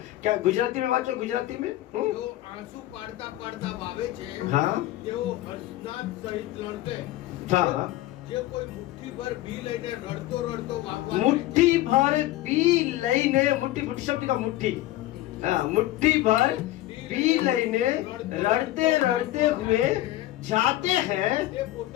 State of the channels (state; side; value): quieter; right; 15.8 dB